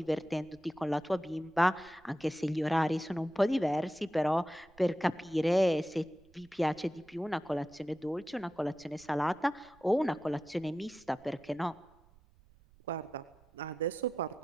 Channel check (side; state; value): right; noise; rumble, 28 dB below the sound